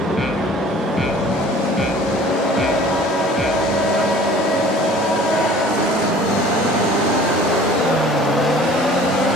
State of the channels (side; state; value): both; normal; correlation 0.48